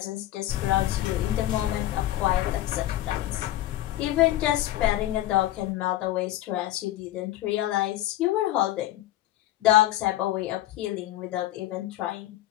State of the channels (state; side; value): quieter; right; 14.5 dB